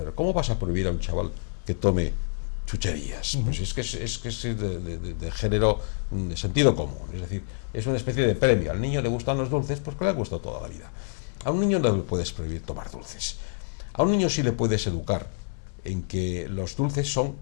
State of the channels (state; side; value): silent; right; digital silence